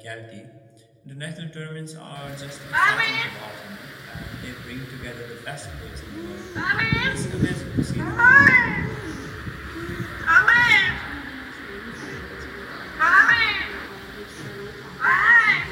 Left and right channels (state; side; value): identical; both; correlation 1.00